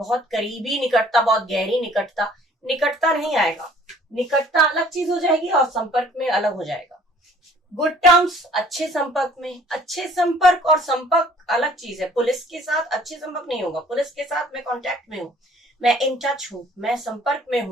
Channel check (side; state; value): both; normal; correlation 0.55